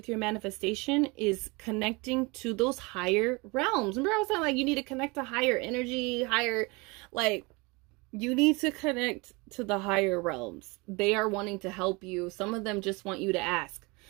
your manifestation is connecting to those higher realms. Remember I was saying, like, you need to connect to higher energy, you need to connect to the higher realms. They are wanting to help you. Some of them just want you to ask.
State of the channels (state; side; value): quieter; left; 26.8 dB